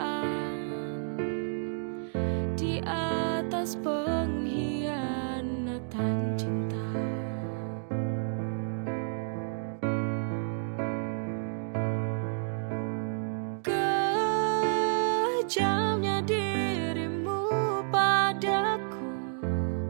di atas pengkhianatan cinta. Kejamnya dirimu padaku,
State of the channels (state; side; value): silent; left; digital silence